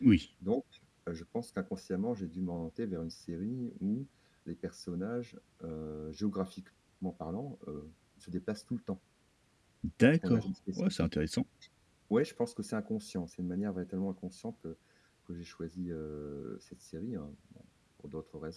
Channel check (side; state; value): both; identical; correlation 1.00